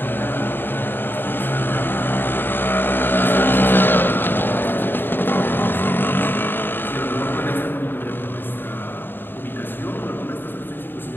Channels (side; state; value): right; late; 0.096 ms